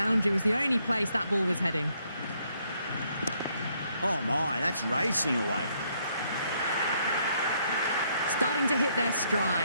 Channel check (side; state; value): both; inverted; correlation -0.71